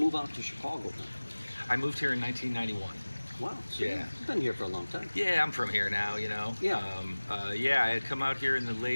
out to Chicago? I moved here in 1991. Wow. So Yeah. You've been here for a long time. Yeah, I'm from here now, you know. Yeah. Yeah, I had come out here in the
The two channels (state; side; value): inverted; both; correlation -1.00